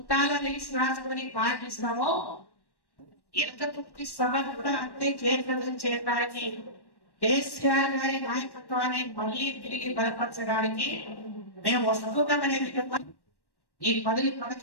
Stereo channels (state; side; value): late; right; 1.1 ms